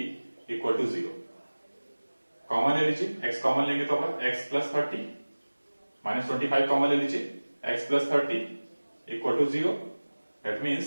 equal to 0। Common ले लीजिए, x कॉमन लेंगे तो अपन x प्लस 30 माइनस 25 कॉमन ले लीजिए, x plus 30 equal to 0। That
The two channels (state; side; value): inverted; both; correlation -1.00